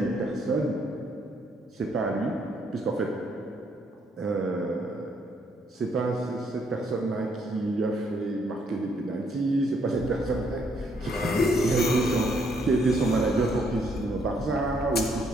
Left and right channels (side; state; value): both; normal; correlation 0.70